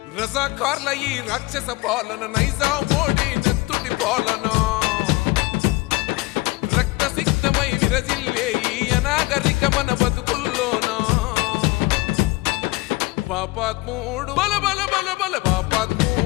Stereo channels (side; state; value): right; quieter; 21.9 dB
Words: రజాకార్ల ఈ రాక్షస పాలన నైజాం మోడీ నెత్తుటి పాలన రక్తసిక్తమై విరజిల్లే ఈ అనాగరిక మన బతుకుల్లోనా పాపాత్ముడు బల బల బల బల